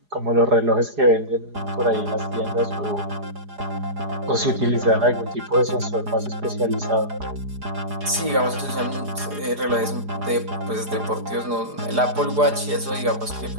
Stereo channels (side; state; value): left; late; 4.9 ms